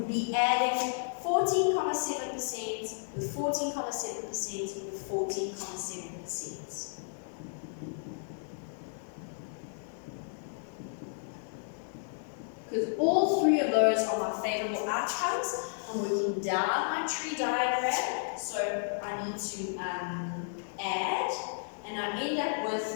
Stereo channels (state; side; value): silent; right; 56 dB below the other